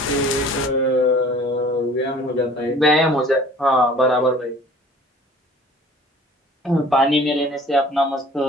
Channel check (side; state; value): both; normal; correlation 0.49